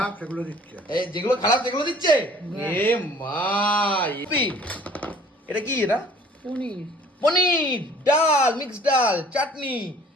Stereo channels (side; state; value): both; normal; correlation 0.53